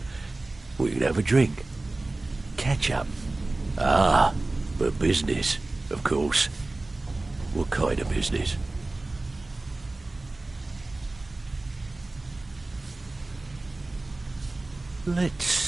We can have a drink. Catch up. Ah, but business, of course. What kind of business? Let's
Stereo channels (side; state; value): left; quieter; 3.0 dB